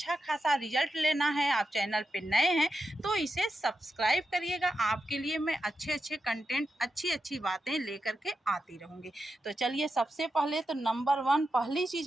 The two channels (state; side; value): normal; both; correlation 0.89